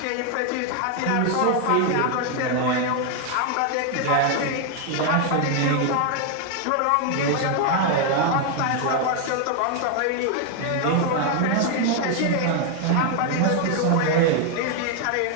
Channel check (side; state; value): both; different; correlation 0.01